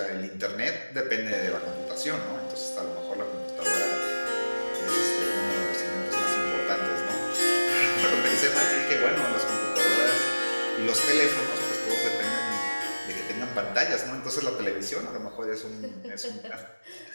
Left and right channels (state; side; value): inverted; both; correlation -1.00